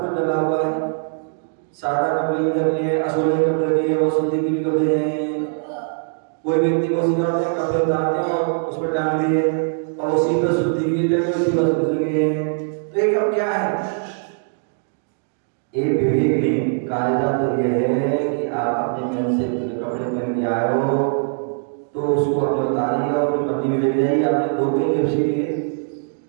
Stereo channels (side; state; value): left; silent; digital silence